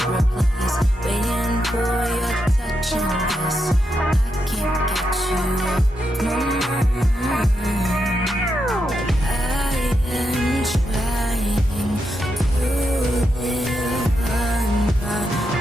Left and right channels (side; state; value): both; normal; correlation 0.84